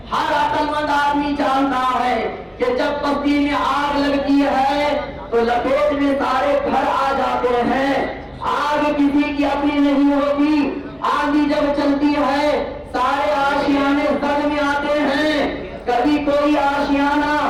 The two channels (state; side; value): identical; both; correlation 1.00